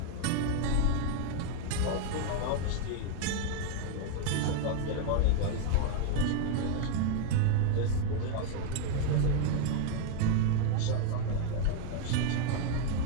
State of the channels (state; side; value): different; both; correlation 0.01